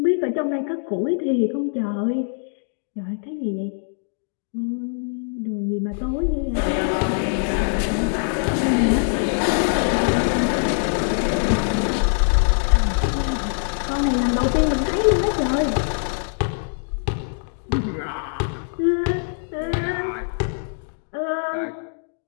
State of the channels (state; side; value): silent; right; digital silence